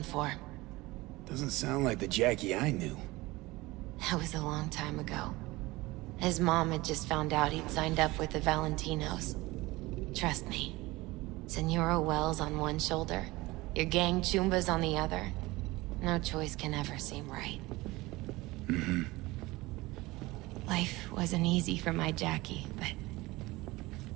for. Doesn't sound like the Jackie I knew. That was a long time ago. His mom had just found out he'd signed up with the Valentinos. Trust me. Senora Wells on one shoulder, your gang Chumbas on the other. No choice can ever seem right. Life wasn't easy for my Jackie, but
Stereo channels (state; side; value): quieter; left; 20.6 dB